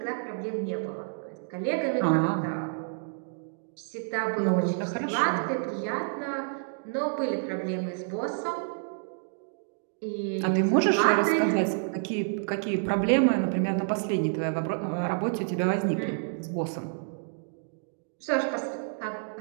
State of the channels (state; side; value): silent; left; digital silence